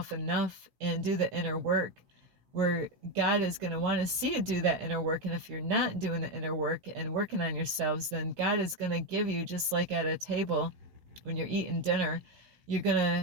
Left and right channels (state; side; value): late; left; 16 ms